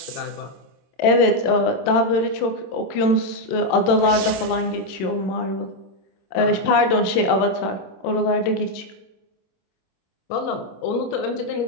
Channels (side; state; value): right; late; 27 ms